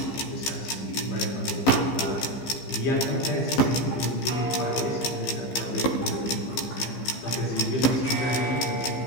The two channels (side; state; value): right; late; 15 ms